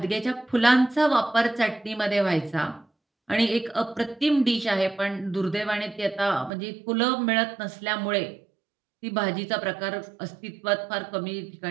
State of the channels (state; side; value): drops out; left; at 6.5 s